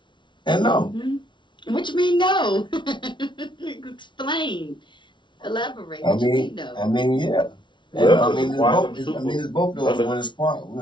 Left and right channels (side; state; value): right; late; 0.23 ms